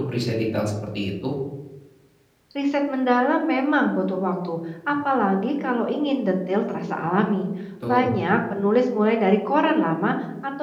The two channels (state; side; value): identical; both; correlation 1.00